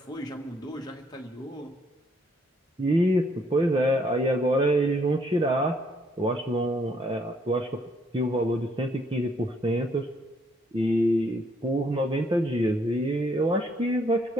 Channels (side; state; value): both; normal; correlation 0.69